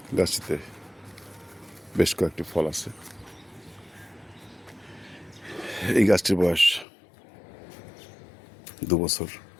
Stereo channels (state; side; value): drops out; right; at 6.9 s